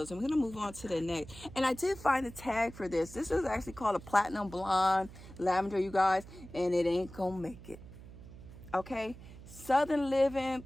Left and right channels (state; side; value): noise; right; hum, 16 dB below the sound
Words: and we're gonna move on to the next. And I did find a tag for this. This is actually called a platinum blonde lavender, you guys, and it ain't gonna make it. Okay, Southern Living